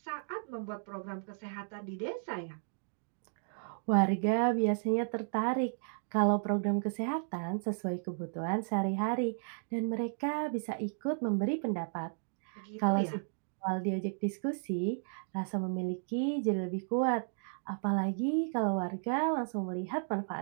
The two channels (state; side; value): silent; left; digital silence